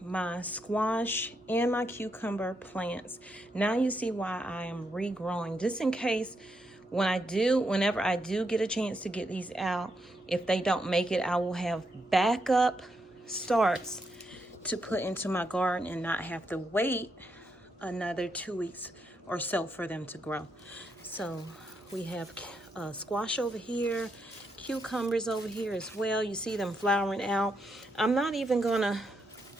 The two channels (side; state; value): both; normal; correlation 0.80